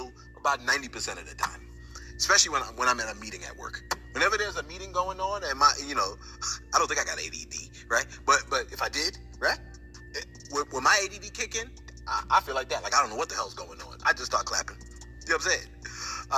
about 90% of the time, especially when I'm at a meeting at work. Whenever there's a meeting going on, and I don't think I got ADD, right? But if I did, right? When my ADD kick in, I feel like that. Like I don't know what the hell's going on. I just start clapping. You know what I'm saying?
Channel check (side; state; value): both; identical; correlation 1.00